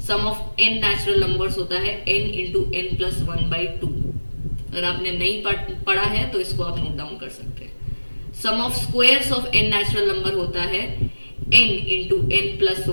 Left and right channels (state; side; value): inverted; both; correlation -1.00